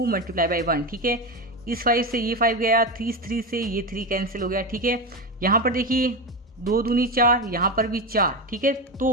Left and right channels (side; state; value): both; normal; correlation 0.17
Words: multiply by 1, ठीक है। इस 5 से ये 5 गया, 3 से ये 3 कैंसिल हो गया, ठीक है। यहाँ पर देखिए 2 दूनी 4, यहाँ पर भी 4, ठीक है।